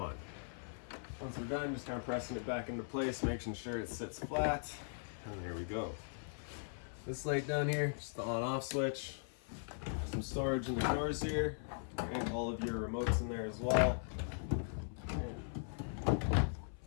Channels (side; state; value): right; silent; 51 dB below the other